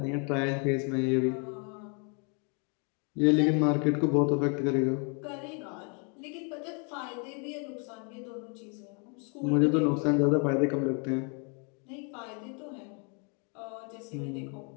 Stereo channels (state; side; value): quieter; right; 37.1 dB